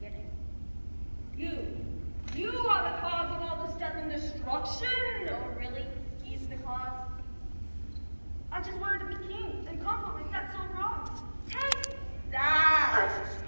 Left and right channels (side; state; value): both; inverted; correlation -1.00